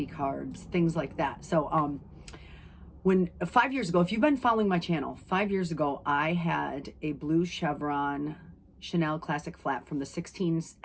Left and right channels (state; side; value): identical; both; correlation 1.00